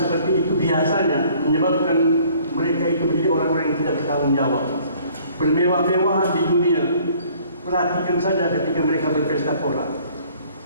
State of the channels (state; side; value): inverted; both; correlation -0.57